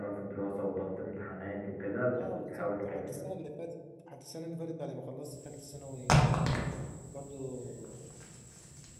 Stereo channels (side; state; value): both; identical; correlation 1.00